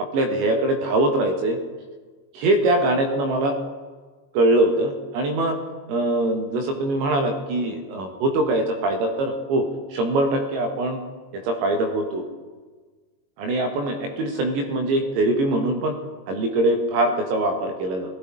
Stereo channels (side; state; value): left; late; 22 ms